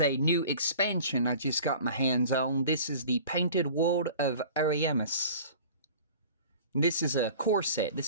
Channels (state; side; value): inverted; both; correlation -0.43